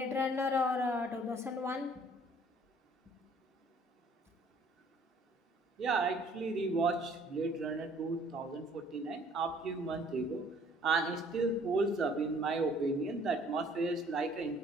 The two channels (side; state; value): both; normal; correlation 0.57